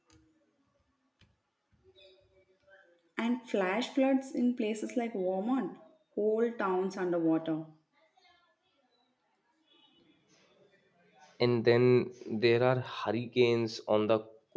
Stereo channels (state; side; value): identical; both; correlation 1.00